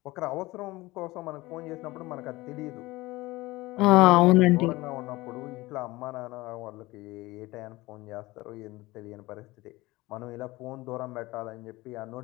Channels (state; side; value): quieter; right; 20.1 dB